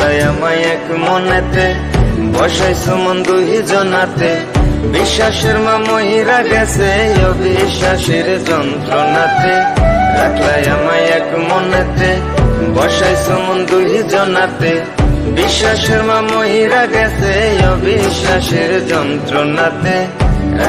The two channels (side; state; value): both; identical; correlation 1.00